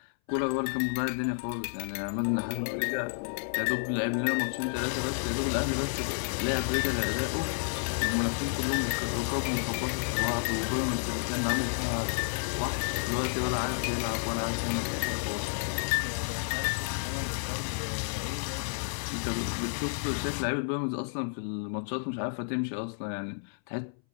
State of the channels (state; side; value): silent; right; 57 dB below the other